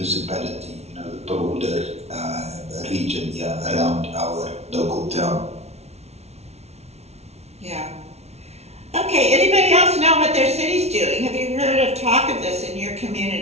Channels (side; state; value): left; late; 0.31 ms